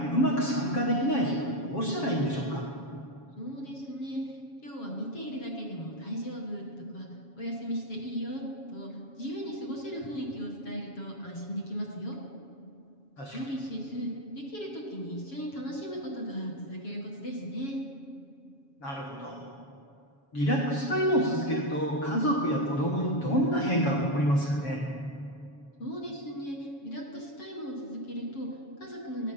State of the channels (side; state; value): right; late; 7.2 ms